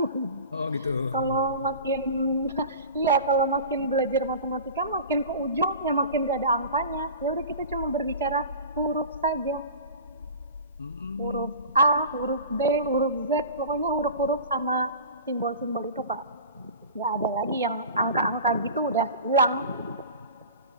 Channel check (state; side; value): inverted; both; correlation -0.37